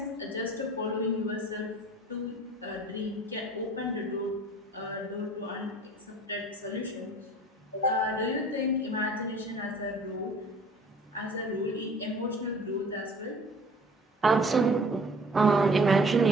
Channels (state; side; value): normal; both; correlation 0.49